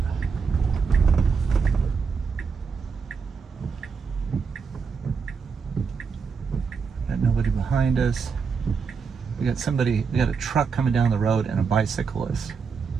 Got nobody behind us. We got a truck coming down the road and a bicyclist.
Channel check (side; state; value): left; quieter; 5.5 dB